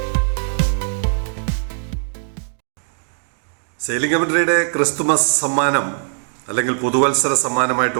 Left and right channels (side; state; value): left; silent; 56 dB below the other